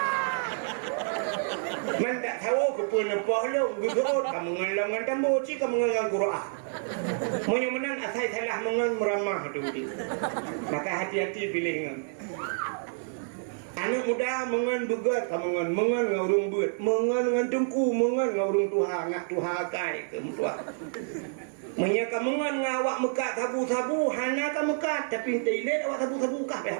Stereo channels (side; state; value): left; silent; digital silence